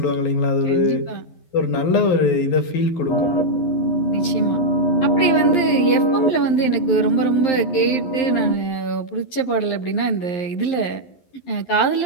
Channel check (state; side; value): late; right; 11 ms